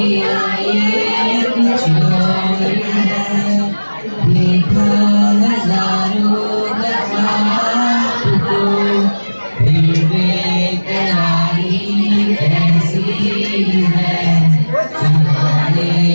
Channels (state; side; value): inverted; both; correlation -1.00